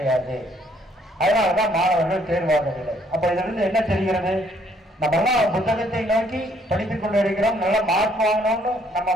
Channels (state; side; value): normal; both; correlation 0.66